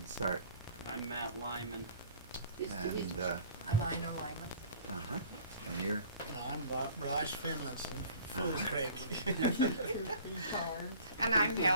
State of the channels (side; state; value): both; inverted; correlation -0.50